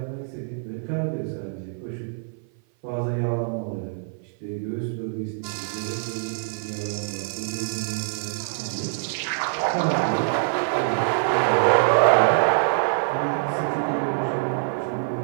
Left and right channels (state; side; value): silent; left; 56 dB below the other